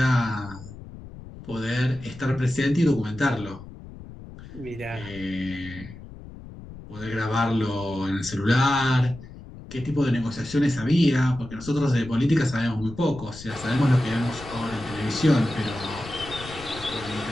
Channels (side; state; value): left; noise; rumble, 15 dB below the sound